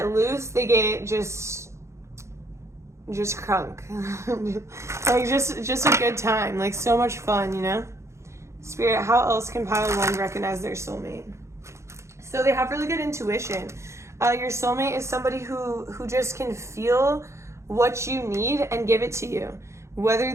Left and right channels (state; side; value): late; left; 0.14 ms